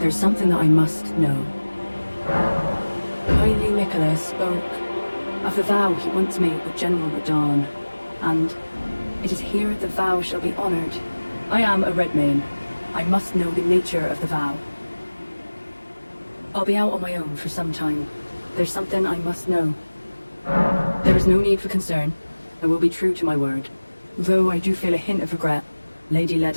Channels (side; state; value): both; inverted; correlation -1.00